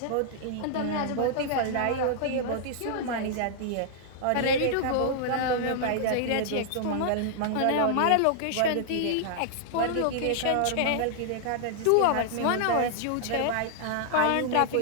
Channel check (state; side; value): different; both; correlation -0.01